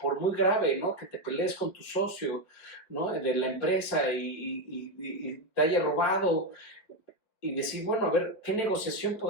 muy grave, ¿no?, que te pelees con tu socio, ¿no?, de la empresa y te haya robado, y decir, bueno, a ver, ¿qué negociación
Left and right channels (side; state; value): right; late; 5.1 ms